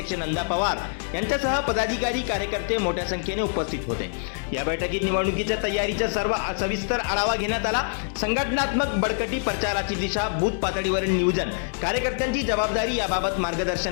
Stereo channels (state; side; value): silent; right; 62 dB below the other